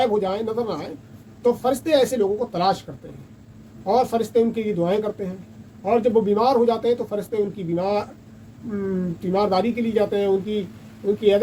हो जाए, नज़र ना आए, तो फरिश्ते ऐसे लोगों को तलाश करते हैं और फरिश्ते उनके लिए दुआएं करते हैं। और जब वो बीमार हो जाते हैं तो फरिश्ते उनकी बीमारदारी के लिए जाते हैं, उनकी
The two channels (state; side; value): identical; both; correlation 1.00